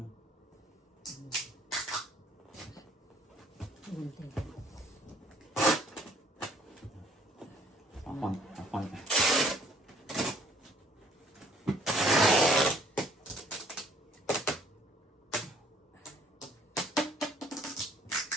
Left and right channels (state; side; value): normal; both; correlation 0.59